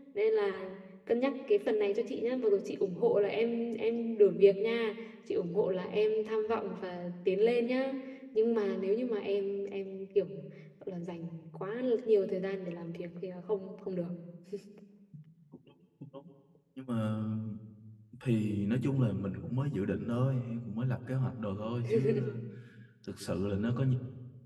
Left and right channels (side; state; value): both; identical; correlation 1.00